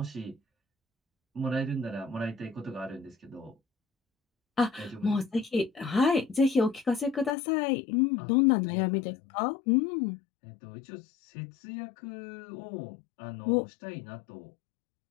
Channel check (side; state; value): right; drops out; at 7.4 s